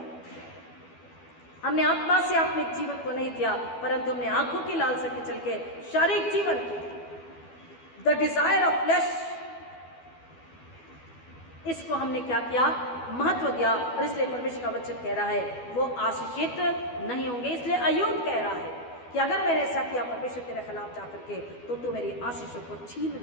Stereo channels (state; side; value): late; right; 12 ms